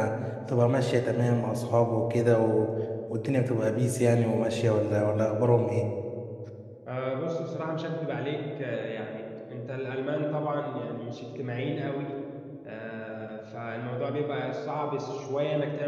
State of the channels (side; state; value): both; identical; correlation 1.00